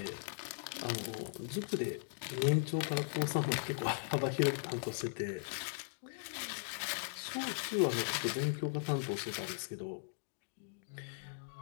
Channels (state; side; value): silent; right; digital silence